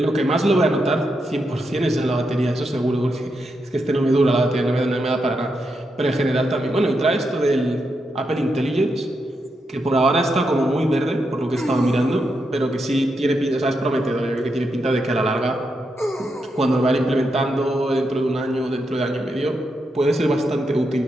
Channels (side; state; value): both; normal; correlation 0.84